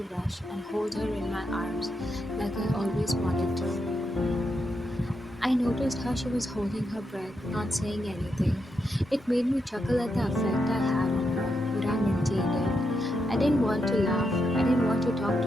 rush and hold her in my arms like I always wanted to. I noticed how she was holding her breath, not saying anything. It made me chuckle at the effect I had on her, but I maintained it. I didn't want to laugh. I didn't want to talk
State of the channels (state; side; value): normal; both; correlation 0.83